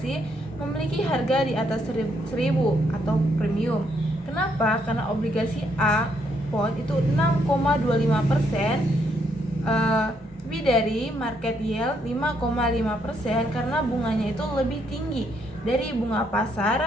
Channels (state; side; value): normal; both; correlation 0.73